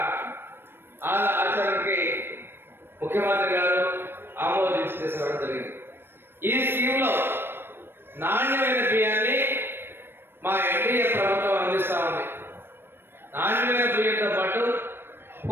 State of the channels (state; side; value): late; left; 0.10 ms